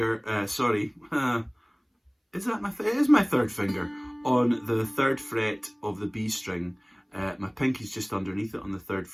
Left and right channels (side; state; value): both; identical; correlation 1.00